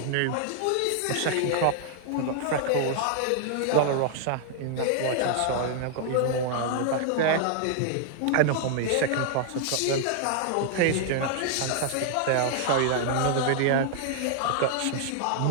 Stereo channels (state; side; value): different; both; correlation -0.01